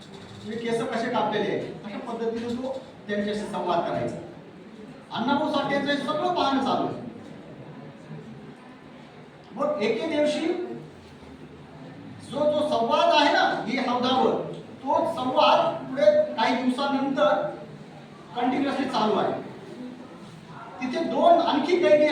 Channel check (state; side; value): identical; both; correlation 1.00